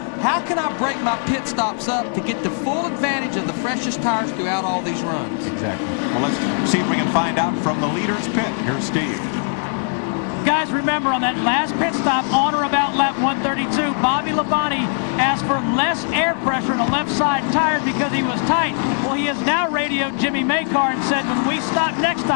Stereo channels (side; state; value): right; silent; 56 dB below the other